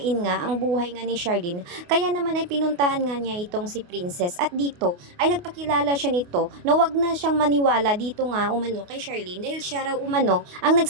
nga ang buhay nga ni Charlene, kaya naman ay pinuntahan nga niya itong si Princess at dito ay nagpakilala siya nito na wag na siyang maniwala dito nga umano kay Charlene dahil siya raw umano ang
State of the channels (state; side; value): late; left; 28 ms